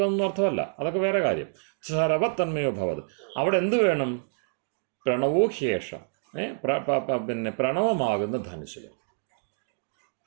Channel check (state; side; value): silent; left; digital silence